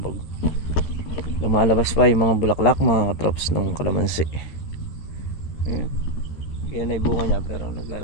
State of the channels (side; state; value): right; late; 13 ms